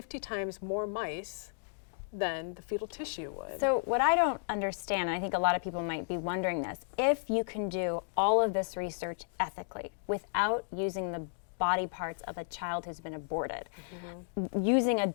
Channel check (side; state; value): right; silent; digital silence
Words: times more mice than the fetal tissue would. So what I don't understand, and I think a lot of people might be wondering this, if you can do all of this research ethically without using the body parts of a child who's been aborted, using